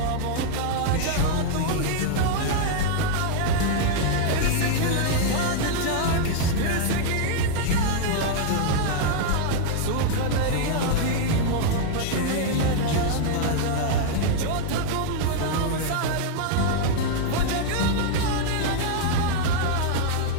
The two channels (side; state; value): both; different; correlation 0.00